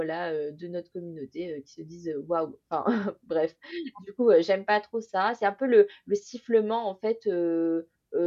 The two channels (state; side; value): identical; both; correlation 1.00